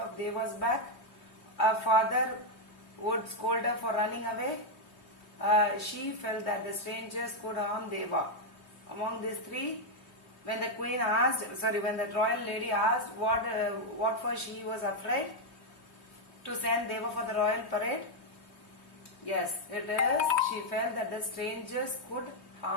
back. Her father would scold her for running away. She felt that the strangers could harm Deva. Among these three, when the royal lady asked what for she was afraid to send Deva for the royal parade, yes, it is. She felt that the strangers could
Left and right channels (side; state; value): right; late; 3.2 ms